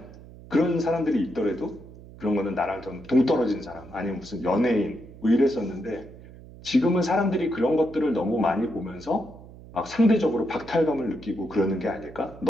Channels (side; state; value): right; noise; hum, 18 dB below the sound